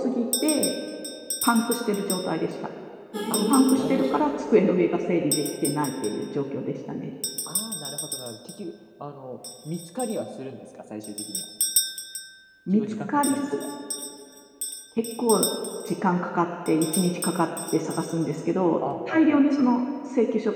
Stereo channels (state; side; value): identical; both; correlation 1.00